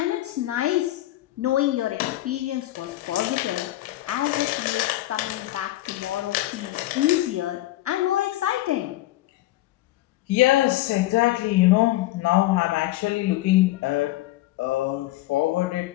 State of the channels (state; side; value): quieter; right; 16.4 dB